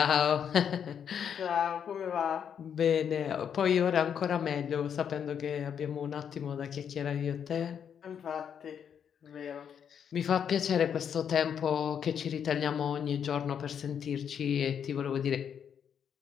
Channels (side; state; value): right; quieter; 8.0 dB